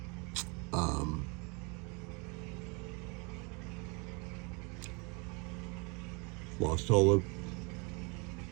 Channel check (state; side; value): quieter; left; 30.9 dB